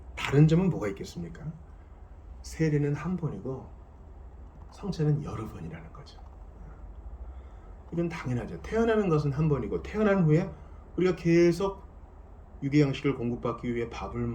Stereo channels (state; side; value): identical; both; correlation 1.00